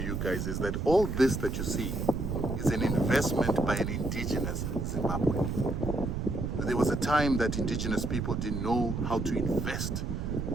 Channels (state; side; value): noise; right; rumble, 2 dB below the sound